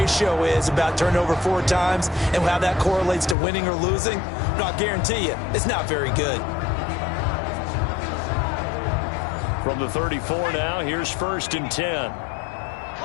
is about turnover 4 times and how that correlates to winning or losing. But I'll guarantee you, it's not very good. From the 34 now, here's 1st and 10.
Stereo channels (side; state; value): right; drops out; at 3.4 s